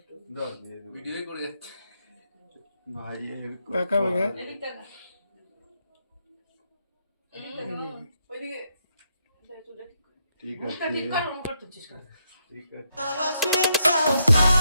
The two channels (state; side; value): inverted; both; correlation -0.79